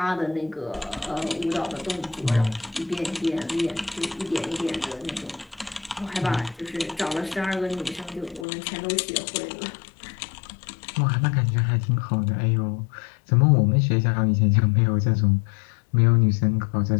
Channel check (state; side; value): drops out; right; at 8.5 s